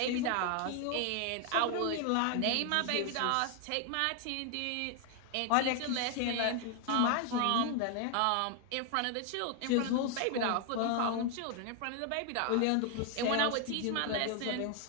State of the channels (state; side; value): different; both; correlation 0.01